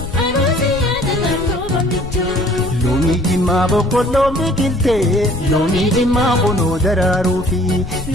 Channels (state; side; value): noise; left; rumble, 10 dB below the sound